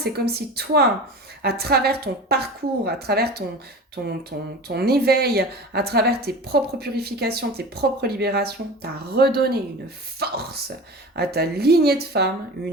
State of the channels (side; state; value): both; normal; correlation 0.34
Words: comme si toi, à travers ton parcours, à travers ton éveil, à travers tes propres purifications, tes propres libérations, tu as redonné une force à ta lignée de femmes,